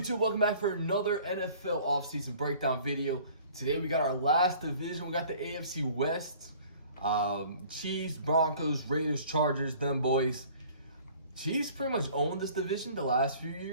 Welcome back for another NFL offseason breakdown video. Today we got our last division. We got the AFC West. Chiefs, Broncos, Raiders, Chargers, them boys. Chiefs pretty much owned this division the last few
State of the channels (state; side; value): inverted; both; correlation -0.51